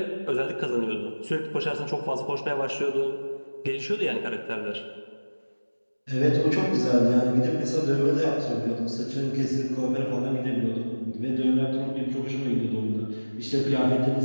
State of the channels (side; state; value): both; inverted; correlation -1.00